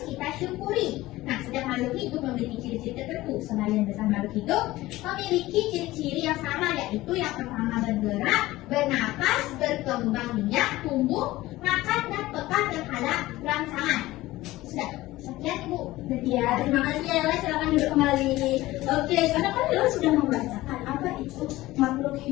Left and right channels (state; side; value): quieter; right; 17.6 dB